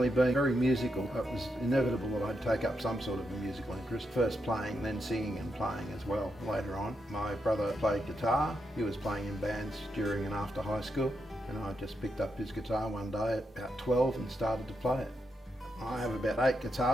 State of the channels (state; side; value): normal; both; correlation 0.83